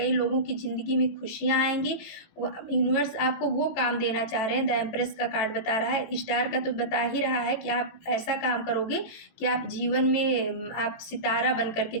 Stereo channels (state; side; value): late; right; 18 ms